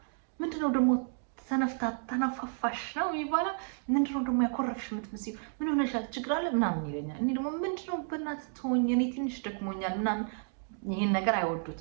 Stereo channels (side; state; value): left; silent; 57 dB below the other